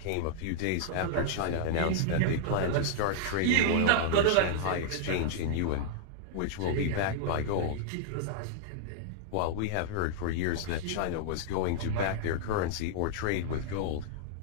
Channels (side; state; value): both; different; correlation -0.01